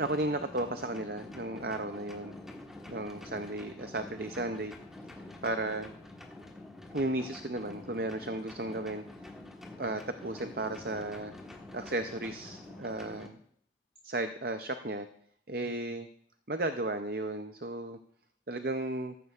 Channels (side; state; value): both; normal; correlation 0.15